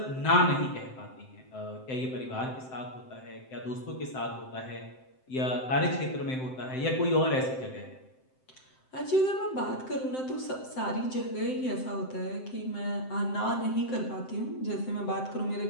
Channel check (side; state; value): right; late; 7.7 ms